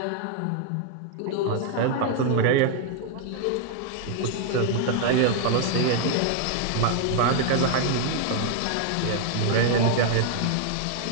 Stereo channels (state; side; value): different; both; correlation 0.00